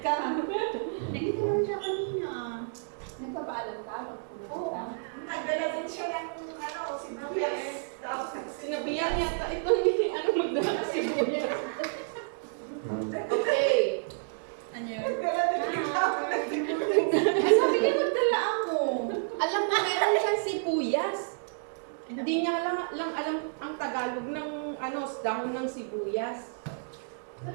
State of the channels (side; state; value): left; silent; digital silence